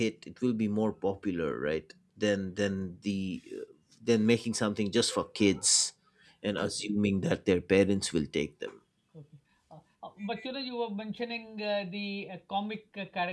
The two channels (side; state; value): both; identical; correlation 1.00